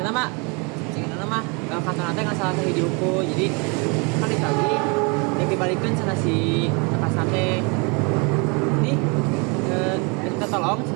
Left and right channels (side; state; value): left; quieter; 31.5 dB